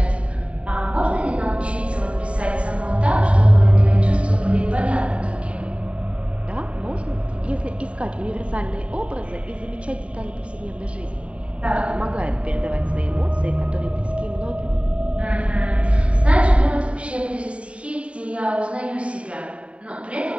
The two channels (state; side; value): late; left; 0.062 ms